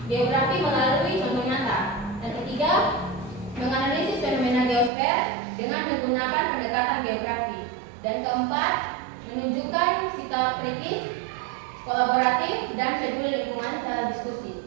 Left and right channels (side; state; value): left; drops out; at 4.9 s